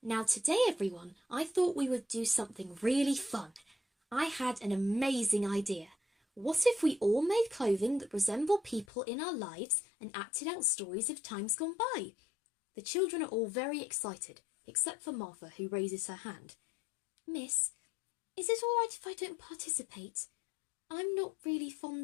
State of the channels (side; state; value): right; drops out; at 8.8 s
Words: Now today, everyone, I thought we would do something really fun. I had an amazing idea. What if we all made clothing that resemble people in our lives and acted out stories of times gone by? The children are all very excited, except for Martha, who raises her hand. Miss, is it all right if I don't participate? I'm not really